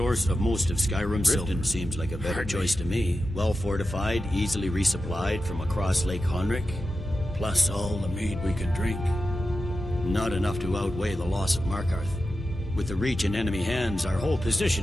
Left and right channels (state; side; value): normal; both; correlation 0.92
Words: of most of Skyrim's Riften seems like a better choice to me. Well fortified, easily resupplied from across Lake Honric, plus all the mead we can drink. Not enough to outweigh the loss of Markarth. With the Reach in enemy hands, our whole